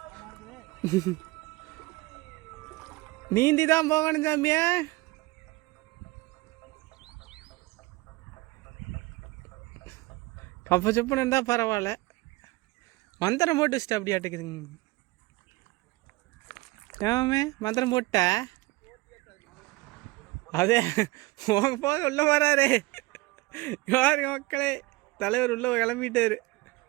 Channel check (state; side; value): quieter; left; 21.5 dB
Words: நீந்தி தான் போகணும் சாமியா. கப்ப செப்புன்னு இருந்தால் பரவாயில்ல, மந்திரம் போட்டு வச்சுட்டு அப்படி ஆட்டுக்குதுங்க. ஏமே மந்திரம் போட்ட அதே போக உள்ள வராரு. யாருங்க மக்களே, தலைவர் உள்ள கிளம்பிட்டாரு.